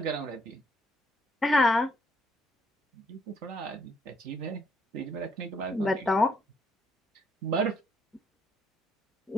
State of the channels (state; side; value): normal; both; correlation 0.69